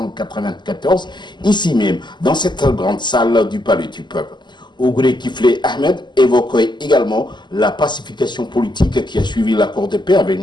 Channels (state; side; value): late; right; 0.21 ms